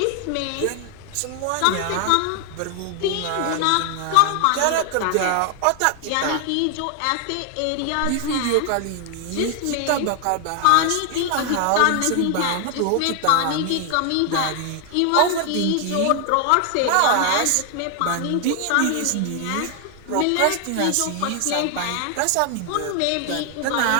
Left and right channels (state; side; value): different; both; correlation 0.00